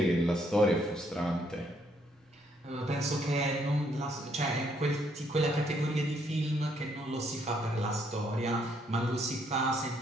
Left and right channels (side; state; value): both; normal; correlation 0.71